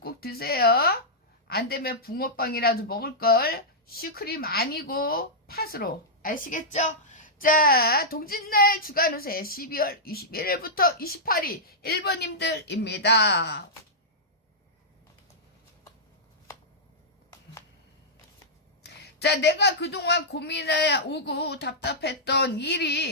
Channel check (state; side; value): normal; both; correlation -0.11